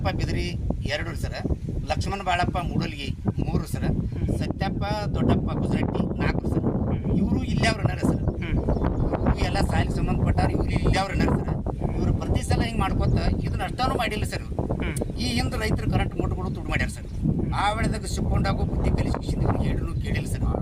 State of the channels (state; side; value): identical; both; correlation 1.00